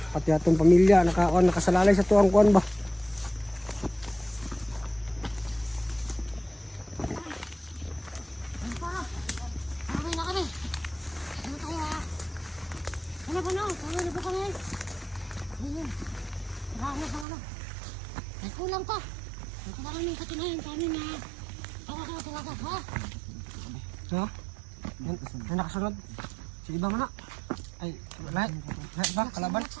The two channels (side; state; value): left; drops out; at 17.2 s